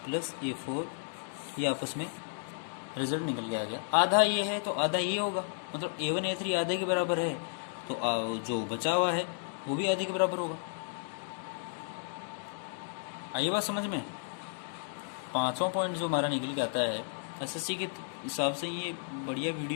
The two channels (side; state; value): right; silent; digital silence